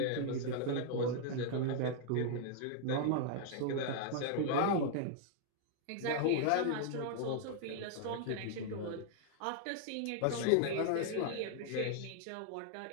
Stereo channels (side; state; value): both; different; correlation -0.01